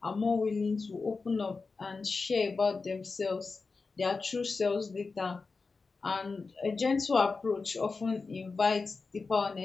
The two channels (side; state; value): right; quieter; 4.3 dB